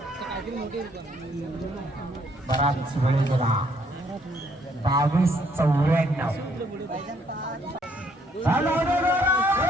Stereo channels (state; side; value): normal; both; correlation 0.68